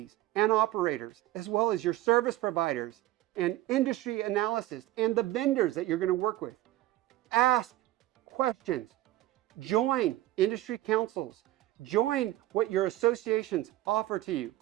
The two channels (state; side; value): quieter; left; 15.3 dB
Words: and operators, as well as your service providers and industry analysis and the vendors that you're going to work with. Ask questions. Join industry councils. Join what your associations offer to you.